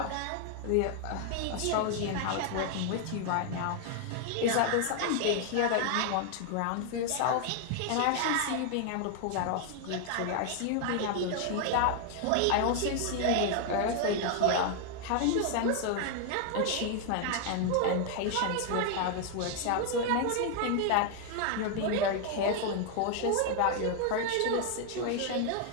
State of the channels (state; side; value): different; both; correlation 0.00